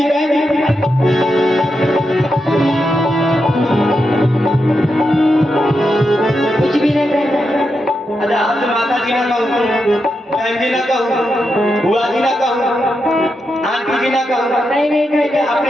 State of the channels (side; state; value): both; normal; correlation 0.86